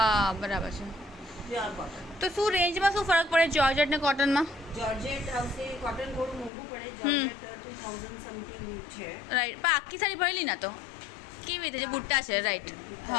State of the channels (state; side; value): drops out; right; at 6.5 s